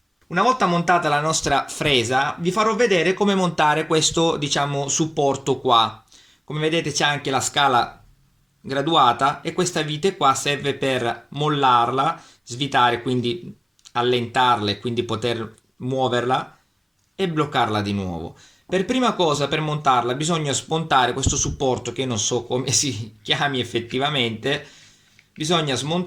una volta montata la nostra fresa vi farò vedere come montare questo, diciamo, supporto qua. Come vedete c'è anche la scala graduata e questa vite qua serve per mollarla, svitare, quindi allentarla e quindi poter muoverla e bloccarla di nuovo. Per prima cosa, per montarla, bisogna smontare questo supporto che non so come si chiami effettivamente. Bisogna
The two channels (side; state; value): both; identical; correlation 1.00